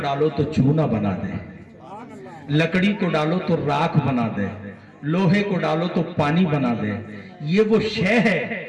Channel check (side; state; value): both; identical; correlation 1.00